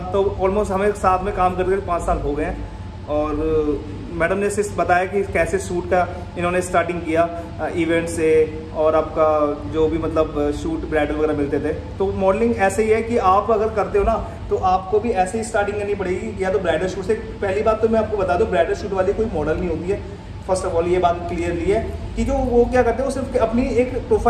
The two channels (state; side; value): identical; both; correlation 1.00